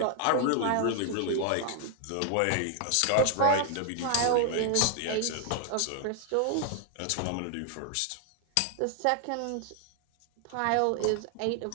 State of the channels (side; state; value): both; different; correlation 0.00